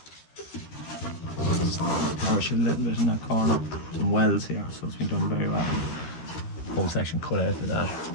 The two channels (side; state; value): right; late; 13 ms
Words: Polish a little bit in that corner, some welds here, so it's been done very well. Whole section cut out of that,